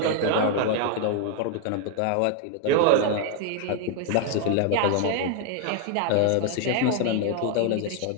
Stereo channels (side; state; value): both; different; correlation 0.00